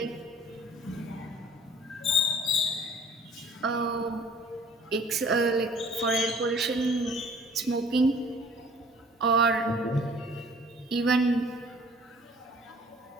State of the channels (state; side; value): normal; both; correlation 0.53